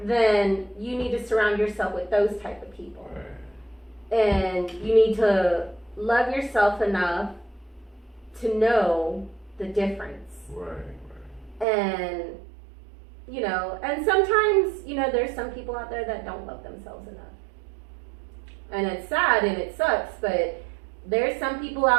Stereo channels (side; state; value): left; drops out; at 11.7 s